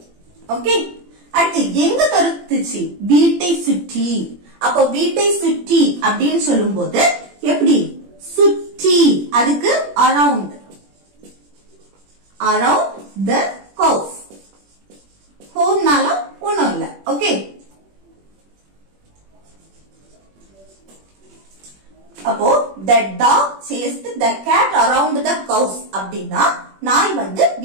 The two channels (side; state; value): left; late; 21 ms